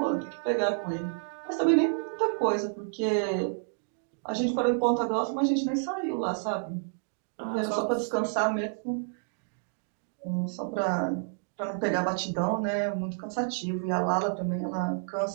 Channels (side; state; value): left; silent; digital silence